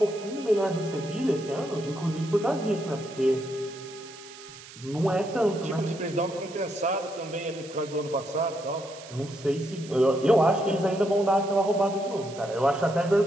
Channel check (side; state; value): right; noise; hiss, 17 dB below the sound